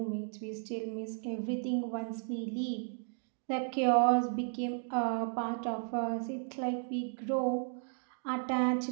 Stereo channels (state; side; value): silent; left; 55 dB below the other